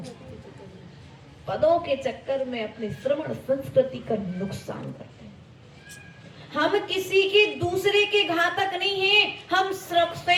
पदों के चक्कर में अपने श्रवण संस्कृति का नुकसान करते हैं। हम किसी के दूसरे के घातक नहीं हैं, हम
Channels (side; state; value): both; identical; correlation 1.00